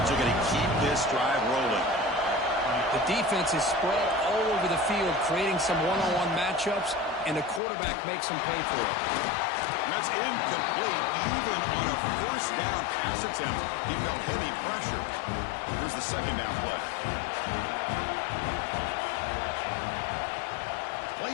are going to keep this drive rolling. The defense is spread all over the field, creating some one-on-one matchups, and the quarterback makes them pay for it. And that's incomplete. Even on a first down pass attempt, he felt heavy pressure. Here's the second down play. Play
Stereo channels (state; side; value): drops out; right; at 7.6 s